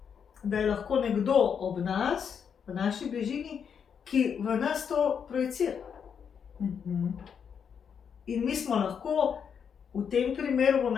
da je lahko nekdo ob nas, v naši bližini, ki v nas to projicira. In mi smo lahko v tem primeru, bom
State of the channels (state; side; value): quieter; right; 7.2 dB